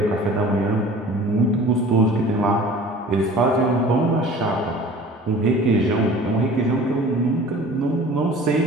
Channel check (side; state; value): both; normal; correlation 0.44